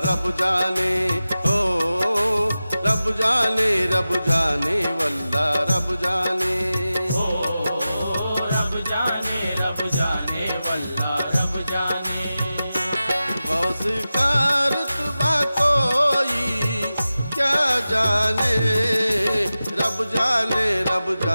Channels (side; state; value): both; inverted; correlation -0.94